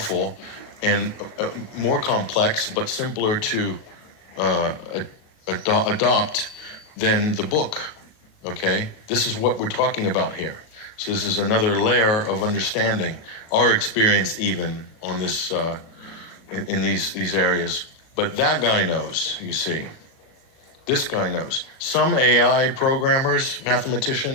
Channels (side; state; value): right; late; 38 ms